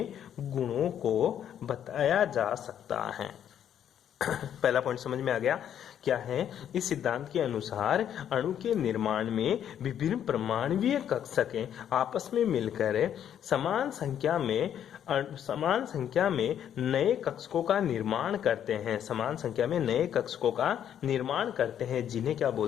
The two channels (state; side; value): quieter; right; 9.7 dB